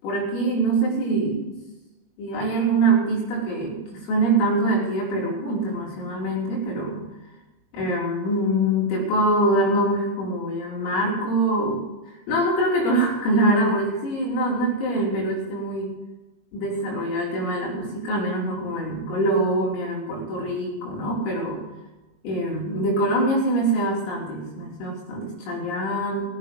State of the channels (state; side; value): late; right; 21 ms